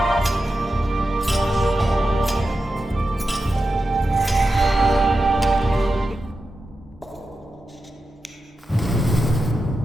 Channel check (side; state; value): both; normal; correlation 0.90